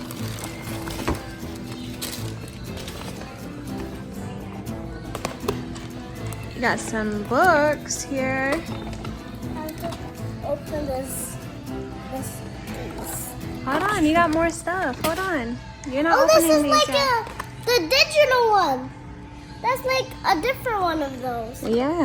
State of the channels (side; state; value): both; identical; correlation 1.00